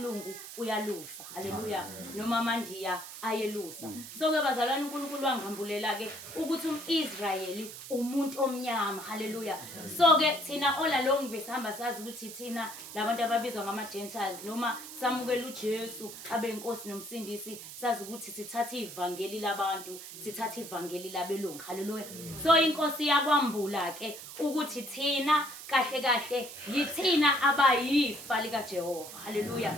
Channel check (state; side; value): noise; right; hiss, 12 dB below the sound